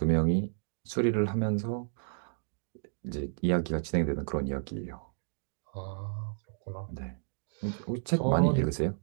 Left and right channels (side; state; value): left; silent; digital silence